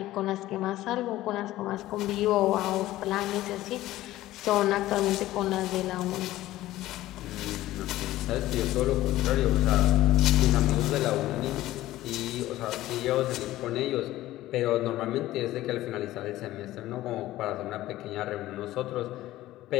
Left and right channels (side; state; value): right; quieter; 15.7 dB